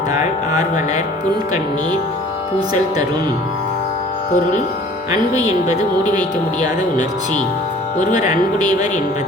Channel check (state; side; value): normal; both; correlation 0.50